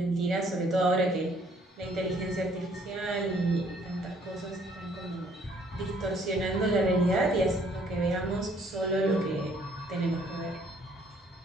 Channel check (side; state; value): both; normal; correlation 0.63